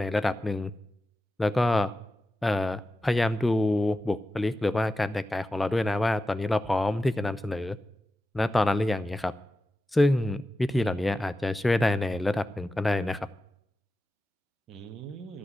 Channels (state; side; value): normal; both; correlation 0.93